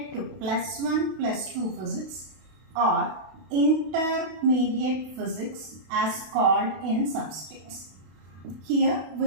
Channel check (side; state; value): left; late; 32 ms